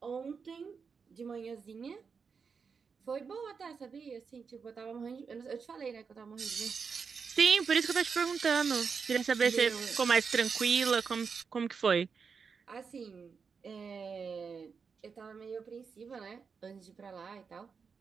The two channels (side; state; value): left; quieter; 5.7 dB